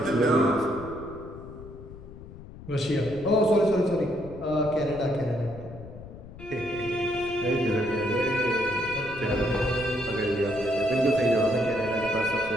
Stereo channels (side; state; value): left; noise; rumble, 15 dB below the sound